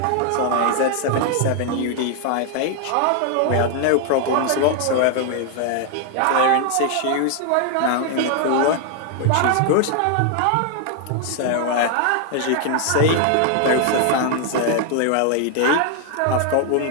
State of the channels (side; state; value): both; different; correlation 0.00